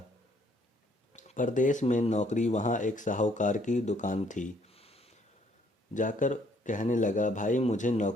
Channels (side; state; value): both; normal; correlation 0.65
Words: परदेश में नौकरी। वहाँ एक साहूकार की दुकान थी। जाकर कहने लगा, भाई मुझे